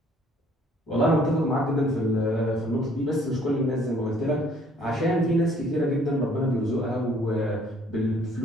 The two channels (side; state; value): both; normal; correlation 0.60